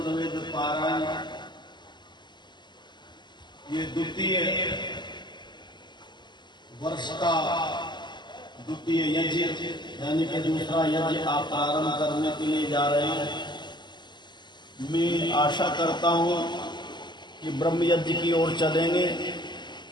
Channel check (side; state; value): right; late; 0.21 ms